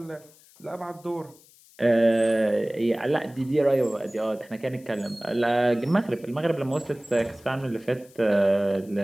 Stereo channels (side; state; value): left; noise; hiss, 27 dB below the sound